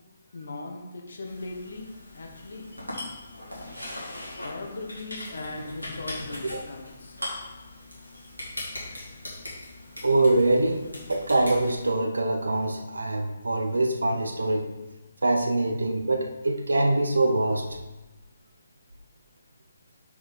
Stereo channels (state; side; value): inverted; both; correlation -0.89